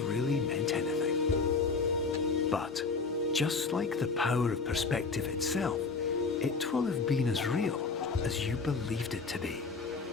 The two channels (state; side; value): quieter; right; 4.6 dB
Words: really meant anything? But just like the power of perspective itself, it will have been as real as you believed it to be.